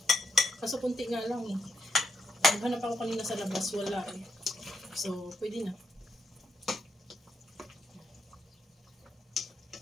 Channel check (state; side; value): normal; both; correlation 0.80